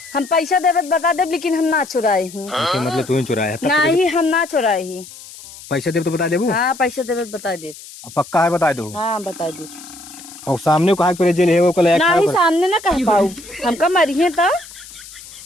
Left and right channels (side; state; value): left; noise; hiss, 17 dB below the sound